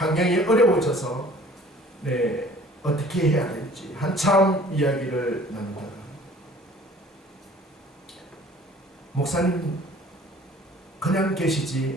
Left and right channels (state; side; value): normal; both; correlation 0.51